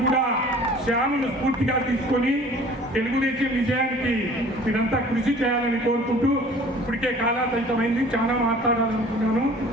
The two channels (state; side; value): normal; both; correlation 0.48